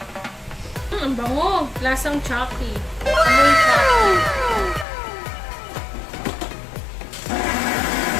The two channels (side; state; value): right; drops out; at 4.9 s